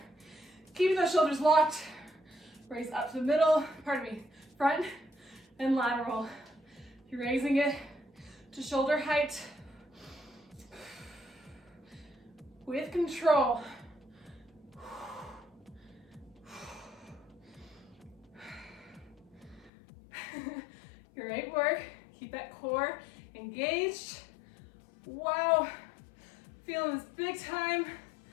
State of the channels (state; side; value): drops out; right; at 19.7 s